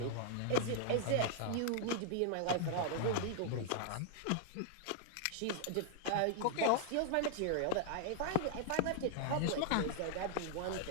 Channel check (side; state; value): both; different; correlation 0.00